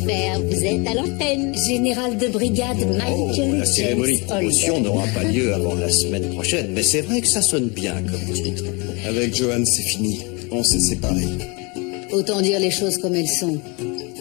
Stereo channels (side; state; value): right; quieter; 29.4 dB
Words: vous êtes à l'antenne. Général de brigade Michael La cérémonie de James promotion Holder. n'aura pas lieu avant la semaine prochaine, mais c'est vrai que ça sonne bien comme titre. Avec Johan, c'est fini. On s'est séparés. Autant dire les choses comme elles sont.